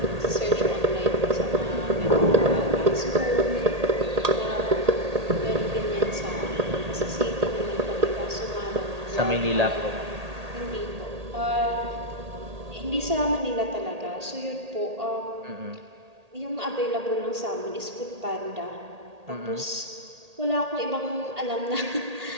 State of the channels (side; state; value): left; late; 1.8 ms